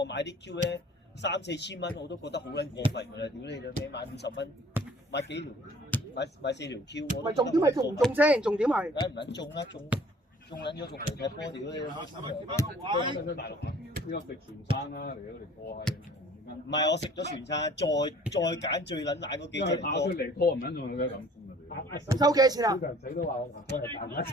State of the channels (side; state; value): both; normal; correlation 0.52